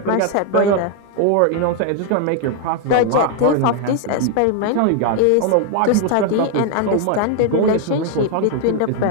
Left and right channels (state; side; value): different; both; correlation 0.00